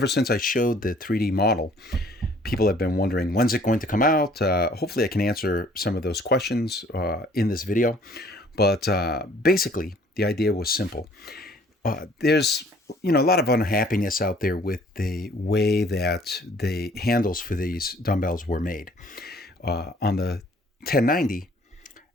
since I showed the 3D model, people have been wondering, when's it going to come out? Hopefully I can answer some of those questions in this video. But basically, the idea was simple. There's a lot of unhappiness out there with the way that the handles for these dumbbells were made. On the 1090,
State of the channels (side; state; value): both; normal; correlation 0.57